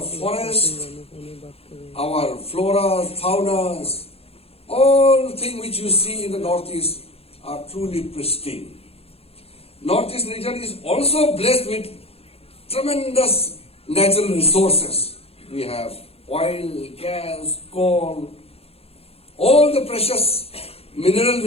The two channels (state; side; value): late; right; 0.29 ms